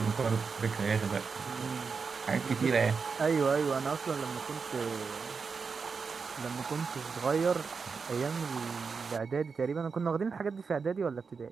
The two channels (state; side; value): quieter; left; 5.2 dB